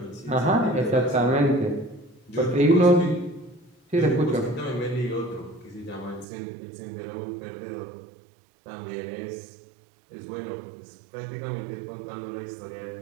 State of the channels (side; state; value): left; drops out; at 6.2 s